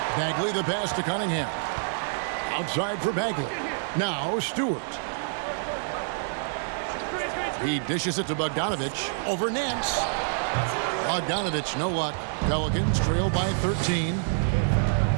Bagley the pass to Cunningham. Outside for Bagley. Now Stewart. He dishes it to Bogdanovich over Nance. Bogdanovich, no luck. Pelicans trail by 13.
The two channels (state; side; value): silent; left; digital silence